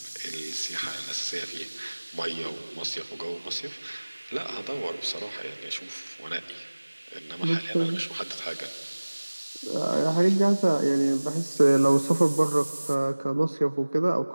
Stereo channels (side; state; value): both; inverted; correlation -1.00